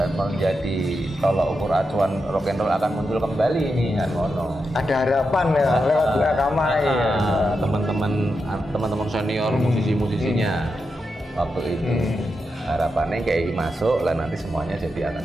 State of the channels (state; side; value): normal; both; correlation 0.87